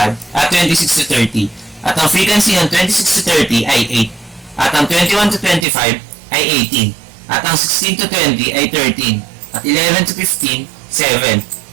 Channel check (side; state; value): left; drops out; at 5.7 s